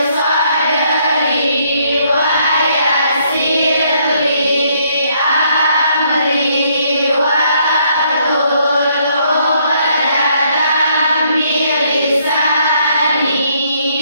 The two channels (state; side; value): inverted; both; correlation -0.69